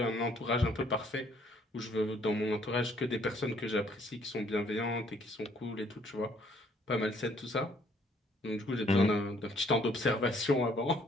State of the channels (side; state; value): both; normal; correlation 0.64